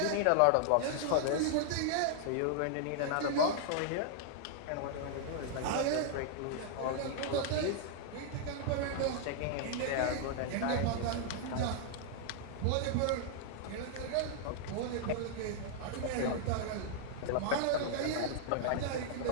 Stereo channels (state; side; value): different; both; correlation -0.01